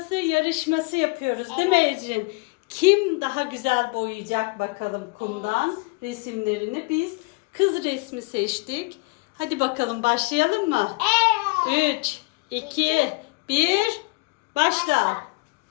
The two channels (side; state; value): right; quieter; 27.6 dB